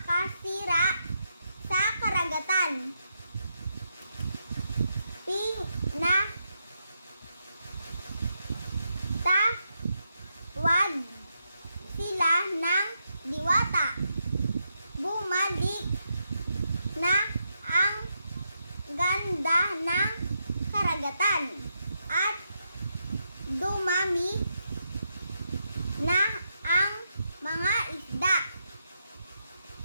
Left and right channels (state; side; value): inverted; both; correlation -0.83